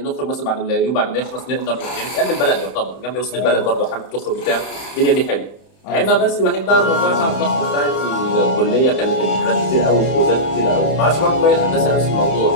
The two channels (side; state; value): right; late; 31 ms